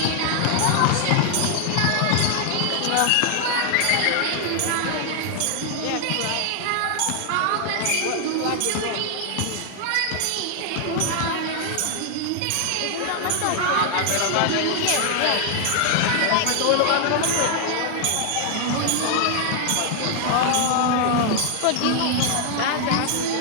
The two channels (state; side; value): different; both; correlation 0.00